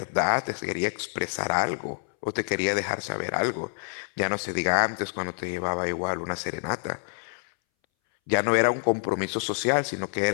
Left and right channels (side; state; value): right; silent; 60 dB below the other